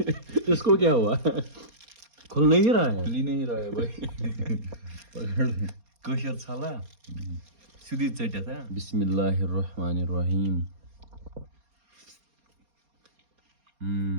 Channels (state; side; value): late; left; 4.3 ms